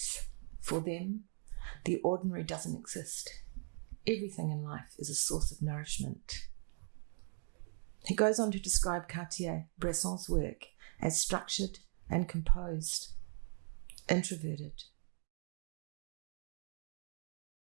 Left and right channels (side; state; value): left; silent; 51 dB below the other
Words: For them, the ordinary doesn't exist. Everything in life is a source of nourishment. He goes on to describe Cartier Bresson's work as structured and composed, introverted.